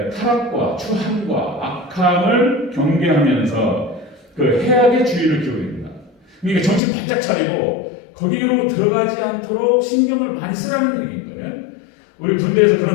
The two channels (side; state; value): right; drops out; at 6.8 s